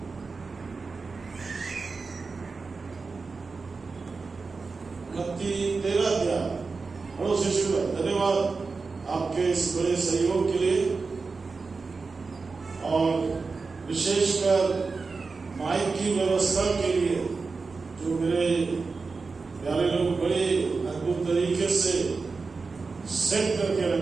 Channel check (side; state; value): left; quieter; 4.3 dB